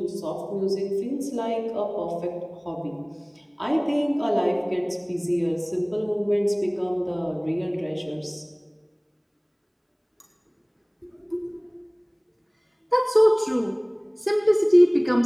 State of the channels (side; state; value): both; identical; correlation 1.00